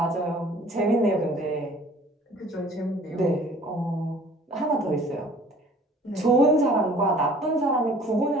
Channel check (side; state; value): both; normal; correlation 0.51